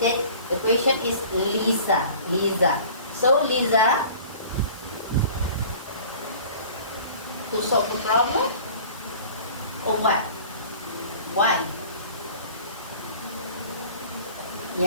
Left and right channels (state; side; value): inverted; both; correlation -0.45